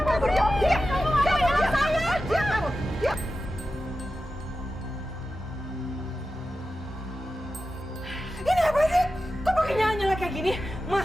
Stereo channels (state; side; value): normal; both; correlation 0.92